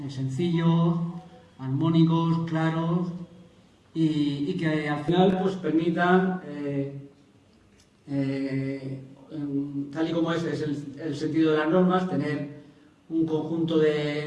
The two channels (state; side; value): identical; both; correlation 1.00